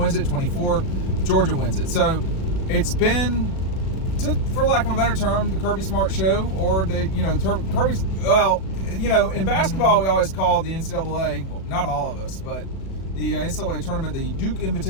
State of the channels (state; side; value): late; right; 37 ms